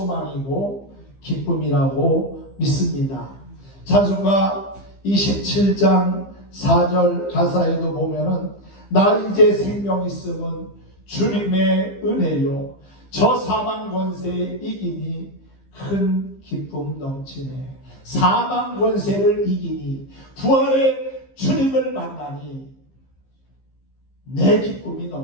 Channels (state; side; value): late; right; 15 ms